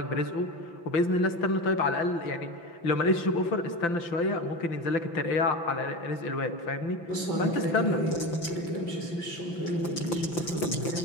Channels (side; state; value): right; late; 5.9 ms